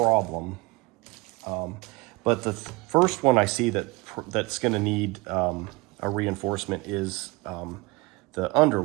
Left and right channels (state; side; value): quieter; left; 24.5 dB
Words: But the first one I see that's going to need a reinforcement is the